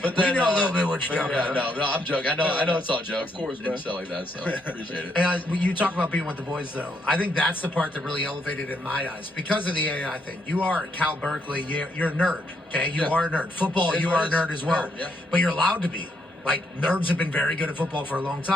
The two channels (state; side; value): normal; both; correlation 0.75